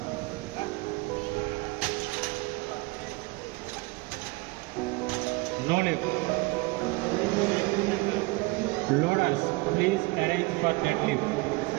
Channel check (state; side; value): quieter; left; 24.2 dB